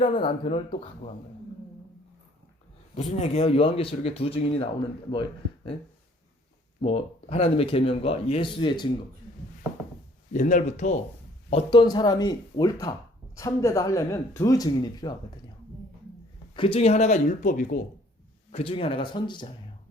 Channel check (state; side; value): normal; both; correlation 0.58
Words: 남편을 또 갖고 간 거예요. 무슨 얘기예요? 요한계시록에 두 증인이 나오는 뭐 하나님의 계명과 예수의 증거. 옛날부터 어떤 사람이 옳다, 참되다 하려면 두 증인이 필요하거든요. 그 중에 하나가 율법이고 그 중에 하나가 선지자예요.